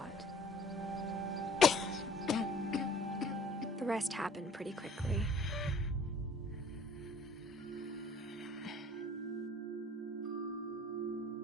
The rest happened pretty quickly.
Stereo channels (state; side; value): normal; both; correlation 0.51